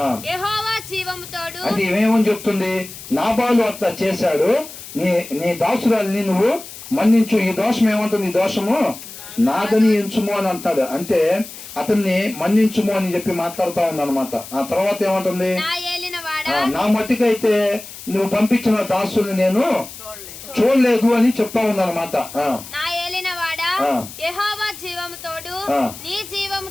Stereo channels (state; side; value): noise; left; hiss, 14 dB below the sound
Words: యెహోవా జీవము తోడు. అది ఏమేమని చెప్తుంది? నాబాలు అట్లా చేశాడు, నీ దాసురాలిని నువ్వు మన్నించు. ఈ దోషం ఏమంటుంది? ఈ దోషము నాదని ఎంచుము అని అంటాడు. అంటే అతన్ని మన్నించుము అని చెప్పి మాట్లాడుతా ఉంది అనమాట. ఆ తర్వాత ఏమంటుంది? నా మట్టికైతే నువ్వు పంపించిన దాసుల్ని నేను చూడలేదు అని చెప్తా ఉందన్నమాట. నా ఏలినవాడా యెహోవా జీవము తోడు, నీ జీవము